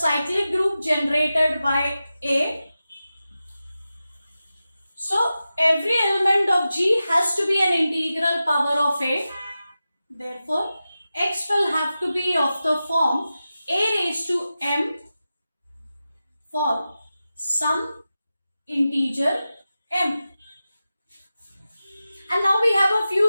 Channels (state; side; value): inverted; both; correlation -0.93